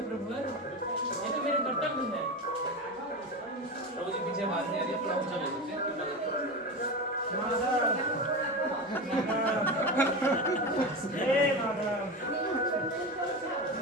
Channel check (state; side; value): normal; both; correlation 0.22